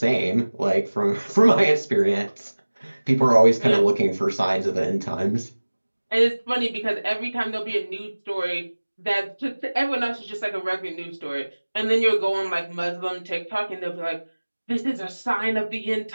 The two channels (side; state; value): both; inverted; correlation -1.00